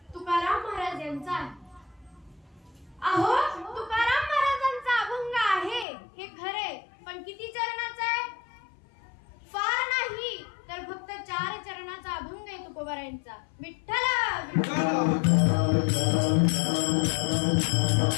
तुकाराम महाराज यांचा आहे। अहो तुकाराम महाराजांचा अभंग आहे हे खरे, पण किती चरणाचा आहे? फार नाही तर फक्त 4 चरणाचा अभंग आहे तुकोबारायांचा। विठ्ठल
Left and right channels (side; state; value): right; drops out; at 5.9 s